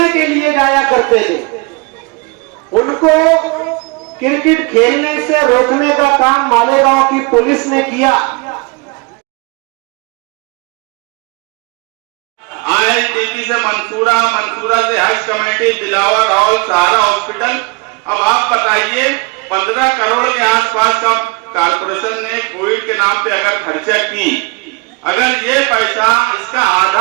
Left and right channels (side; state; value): left; quieter; 28.4 dB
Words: के लिए जाया करते थे, उनको क्रिकेट खेलने से रोकने का काम मालेगांव की पुलिस ने किया। IITP से मंसूरा, मंसूरा से हज कमेटी, दिलावर हॉल, सहारा हॉस्पिटल। अब आप बताइए 15 करोड़ के आसपास का कारपोरेशन ने कोविड के नाम पे अगर खर्चा की, अगर ये पैसा, इसका